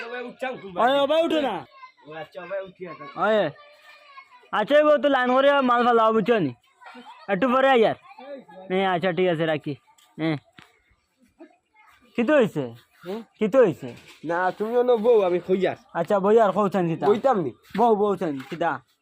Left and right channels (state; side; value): identical; both; correlation 1.00